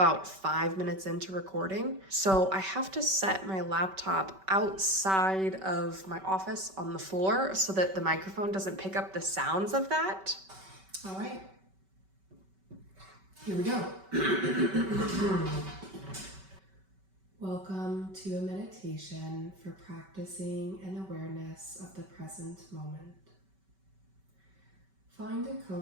5 minutes into recording. So I have to set my laptop outside of my office on the floor so that the microphone doesn't pick up the sounds of that. All right, here we go. Welcome to a meditation for practicing an awareness of the present moment. Find a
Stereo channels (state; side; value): late; left; 5.2 ms